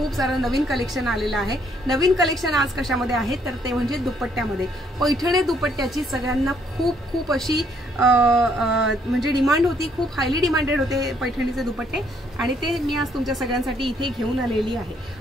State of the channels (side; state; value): both; normal; correlation 0.68